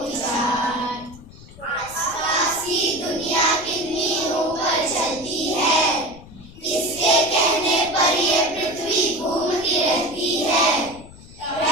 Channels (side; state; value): left; noise; rumble, 19 dB below the sound